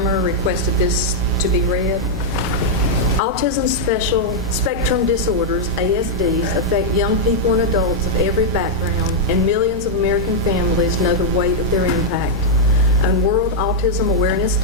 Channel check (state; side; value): normal; both; correlation -0.04